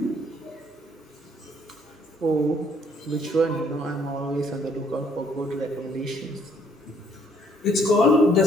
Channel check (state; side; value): normal; both; correlation 0.65